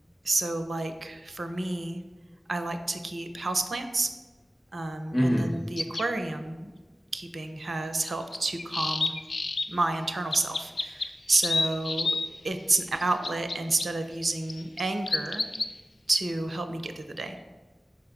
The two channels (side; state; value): both; normal; correlation 0.94